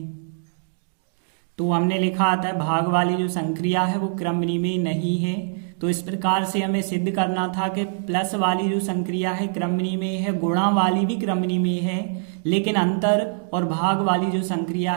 तो हमने लिखा आता है भाग वाली जो संक्रिया है वो क्रमनी में नहीं है। तो इस प्रकार से हमें सिद्ध करना था कि प्लस वाली जो संक्रिया है क्रमनी में है, गुणा वाली भी क्रमनी में है, लेकिन अंतर और भाग वाली जो संक्रिया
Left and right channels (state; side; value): silent; left; digital silence